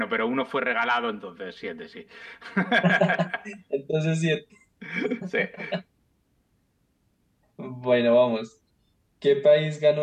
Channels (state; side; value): identical; both; correlation 1.00